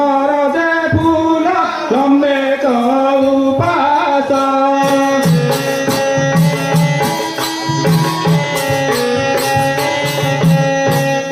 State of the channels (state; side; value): identical; both; correlation 1.00